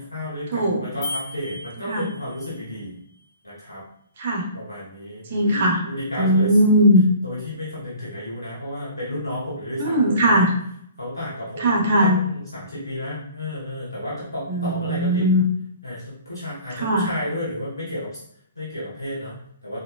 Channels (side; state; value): both; inverted; correlation -0.47